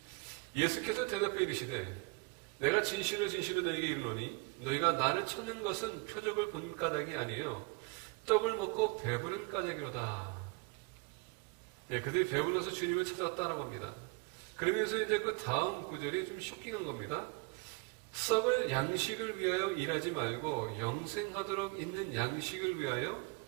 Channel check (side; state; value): left; quieter; 27.3 dB